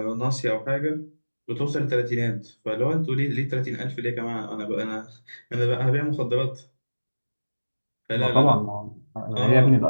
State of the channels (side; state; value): both; inverted; correlation -1.00